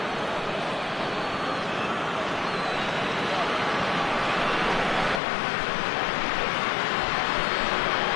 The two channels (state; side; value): drops out; right; at 5.2 s